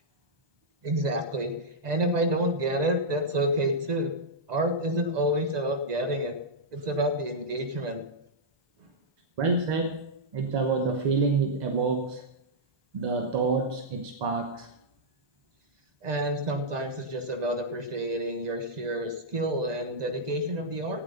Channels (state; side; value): late; left; 1.2 ms